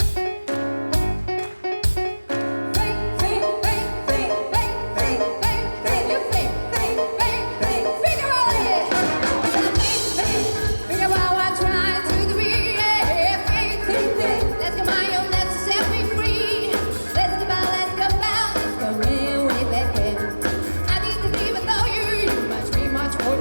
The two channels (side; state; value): both; inverted; correlation -1.00